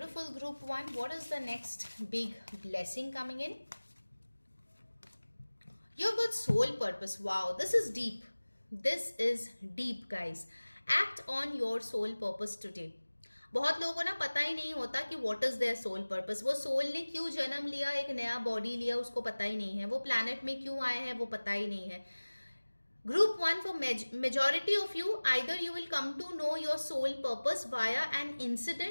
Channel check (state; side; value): inverted; both; correlation -1.00